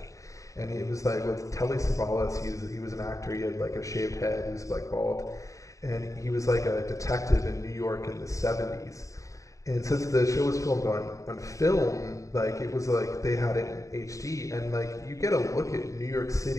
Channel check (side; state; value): right; late; 0.16 ms